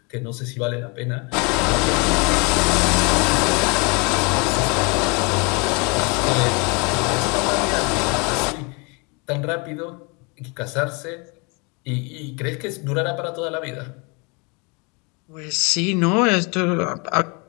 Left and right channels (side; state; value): right; quieter; 30.9 dB